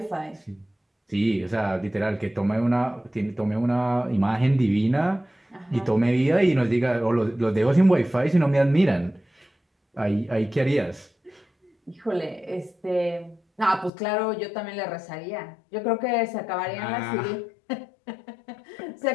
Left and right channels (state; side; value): drops out; right; at 13.9 s